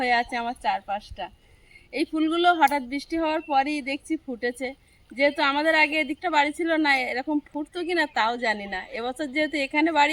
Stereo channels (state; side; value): identical; both; correlation 1.00